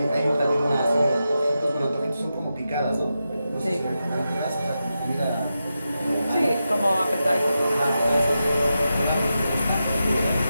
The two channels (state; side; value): inverted; both; correlation -0.89